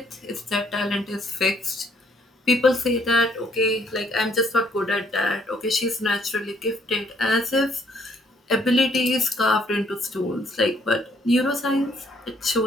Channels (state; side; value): normal; both; correlation 0.66